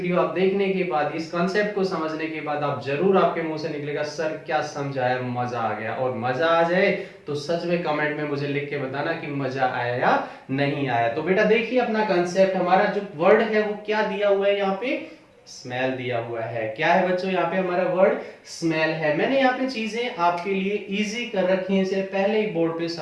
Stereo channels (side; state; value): both; identical; correlation 1.00